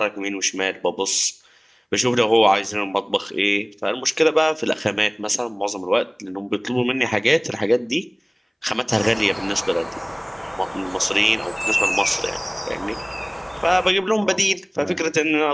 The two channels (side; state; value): both; identical; correlation 1.00